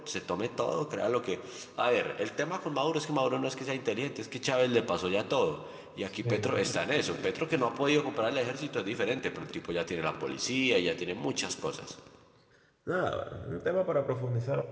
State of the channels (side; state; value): both; identical; correlation 1.00